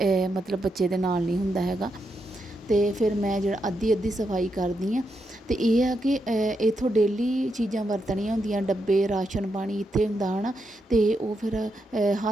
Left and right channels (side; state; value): both; normal; correlation 0.83